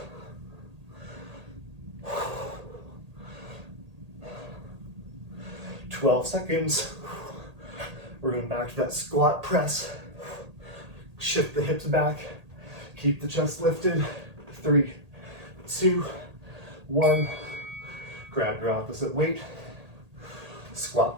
12 seconds. We're going back to that squat press. Shift the hips back. Keep the chest lifted. 3, 2, 1. Grab your opposite weight. Squat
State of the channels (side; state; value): left; late; 1.8 ms